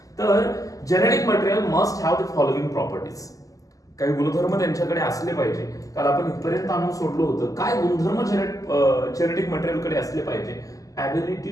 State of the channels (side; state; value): right; late; 0.17 ms